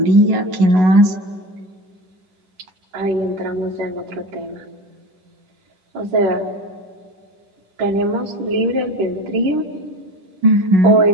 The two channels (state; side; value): late; left; 10 ms